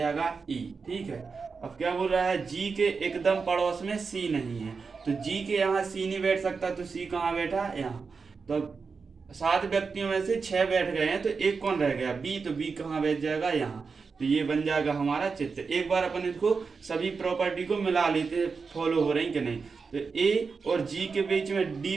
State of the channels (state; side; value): quieter; left; 5.0 dB